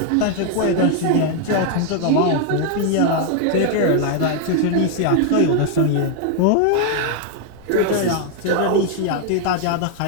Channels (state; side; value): different; both; correlation 0.00